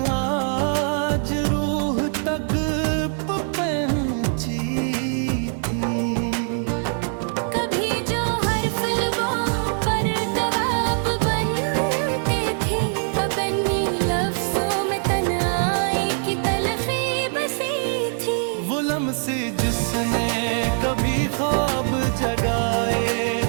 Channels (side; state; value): left; silent; 55 dB below the other